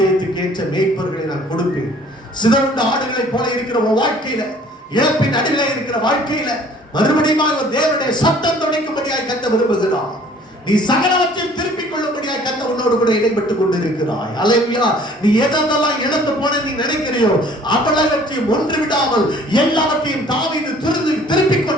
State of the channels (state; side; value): normal; both; correlation 0.54